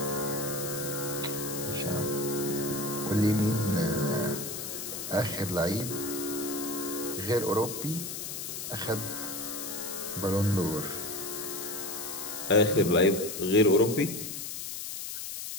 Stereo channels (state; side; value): noise; left; hiss, 6 dB below the sound